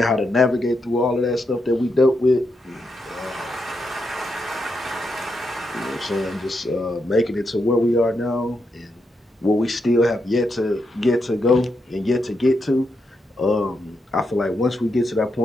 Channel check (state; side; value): normal; both; correlation 0.83